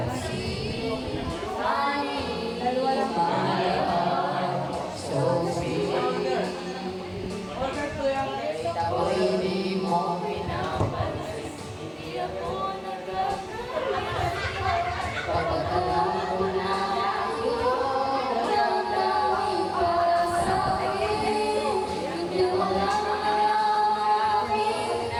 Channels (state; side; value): identical; both; correlation 1.00